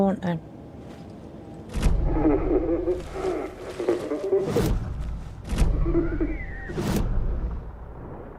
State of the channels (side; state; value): both; identical; correlation 1.00